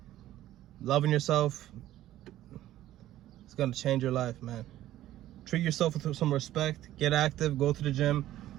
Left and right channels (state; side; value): quieter; left; 13.8 dB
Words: loving yourself is going to change your life, man. Treat yourself with some respect. Get active. Go to the gym.